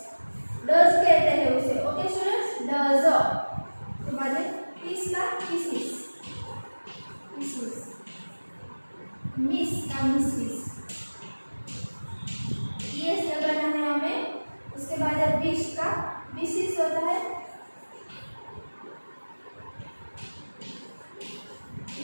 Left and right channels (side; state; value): both; inverted; correlation -1.00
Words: डस कहते हैं उसे। Okay students, does. तो बाद में किस का किसिस, किसिस, मिस का मिसिस, एस लगाना है हमें। उसके बाद है विश का विशेष होता है